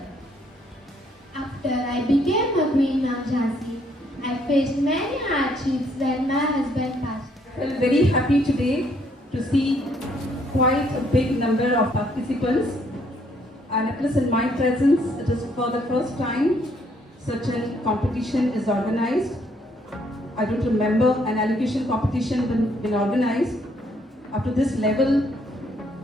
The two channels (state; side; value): normal; both; correlation 0.68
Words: After I became a queen of Jhansi, I faced many hardships when my husband passed. I felt very happy today to see quite a big number of participants, and at least in my presence, it is for the first time such a competition is organized. I don't remember an elocution competition been organized up to this level.